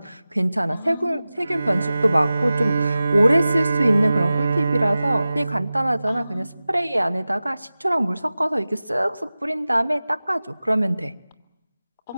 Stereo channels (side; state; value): both; inverted; correlation -0.96